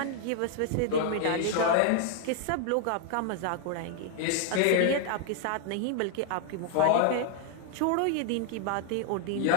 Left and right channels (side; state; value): both; different; correlation 0.00